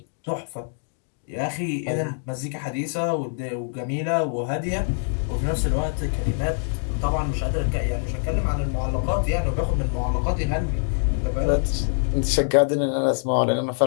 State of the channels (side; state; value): right; silent; digital silence